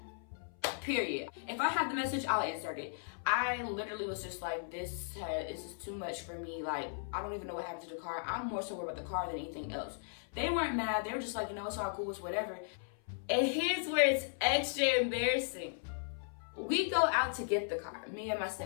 period. If I have the message, I'll insert it. I literally was just like, this is too much for me. Like, I don't even know what happened to the car. I'm more so worried about the car than anything else. They weren't mad. They were just like, you know, it's all cool, it's whatever. And here's where it's extra embarrassing. We go out to get the car, me and my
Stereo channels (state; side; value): silent; right; 53 dB below the other